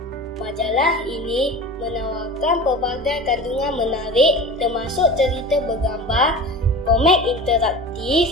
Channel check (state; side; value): normal; both; correlation 0.34